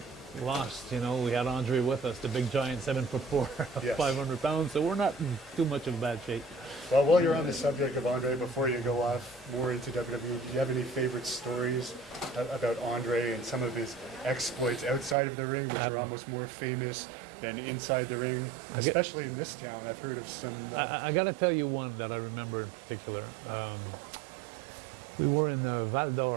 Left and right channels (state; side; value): drops out; left; at 15.2 s